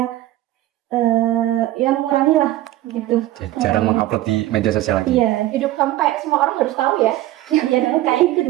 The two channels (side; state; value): left; quieter; 15.5 dB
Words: ya mengurangi lah gitu. Jarang mengupload di media sosial lagi. Iya, Hidup kamu kayak semua orang harus tahu ya. ya dong, kayak itu